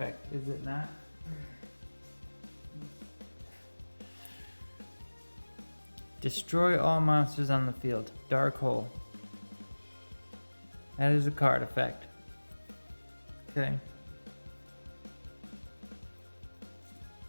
is it not? Destroy all monsters on the field. Dark hole. That is a card effect. Okay.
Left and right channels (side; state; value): both; inverted; correlation -1.00